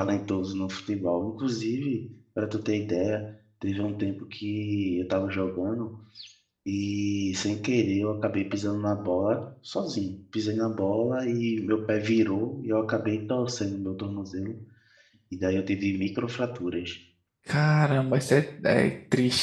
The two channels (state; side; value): identical; both; correlation 1.00